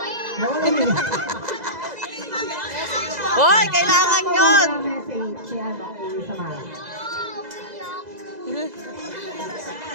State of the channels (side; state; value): left; late; 2.0 ms